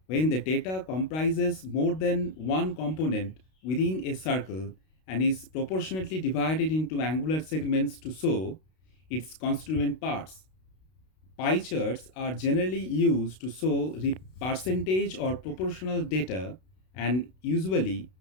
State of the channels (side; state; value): right; late; 32 ms